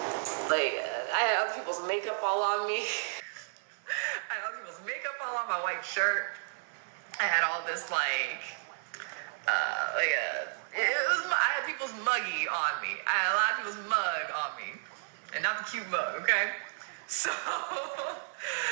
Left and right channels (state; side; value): silent; left; 56 dB below the other